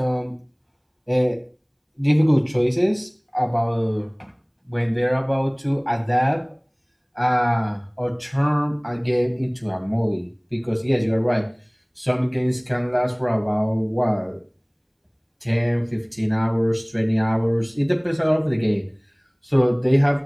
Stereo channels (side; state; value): both; identical; correlation 1.00